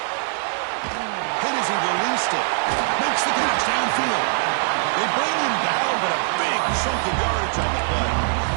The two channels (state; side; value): silent; left; 61 dB below the other